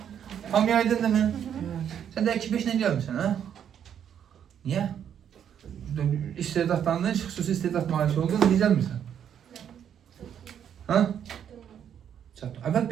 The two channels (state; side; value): quieter; left; 9.0 dB